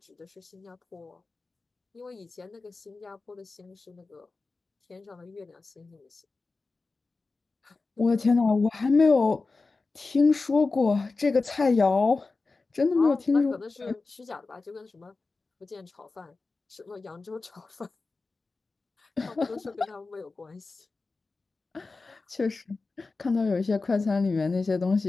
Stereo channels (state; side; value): quieter; right; 3.8 dB